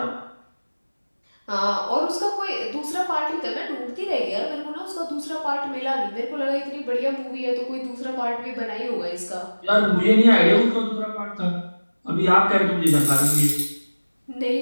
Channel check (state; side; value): inverted; both; correlation -1.00